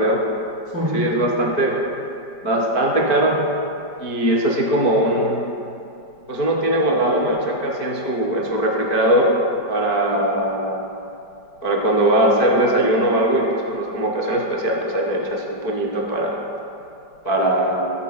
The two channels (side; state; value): right; late; 5.1 ms